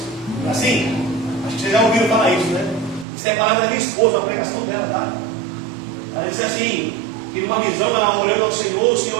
Assim? Acho que vocês já ouviram falar isso, né? Isso é a palavra da minha esposa, a pregação dela, tá? Ela disse assim, que numa visão, ela orando ao Senhor, o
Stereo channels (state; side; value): drops out; left; at 3.1 s